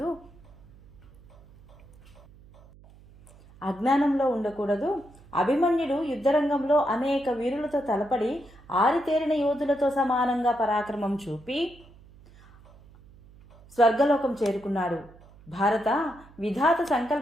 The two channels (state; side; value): noise; right; hum, 24 dB below the sound